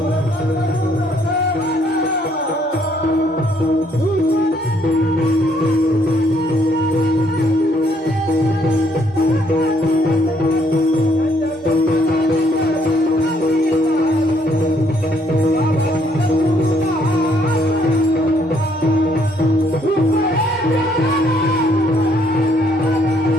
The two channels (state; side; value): normal; both; correlation 0.68